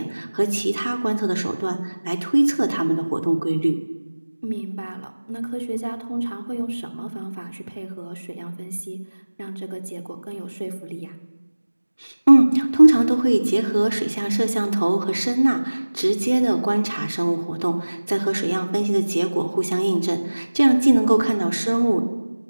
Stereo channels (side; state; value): both; inverted; correlation -1.00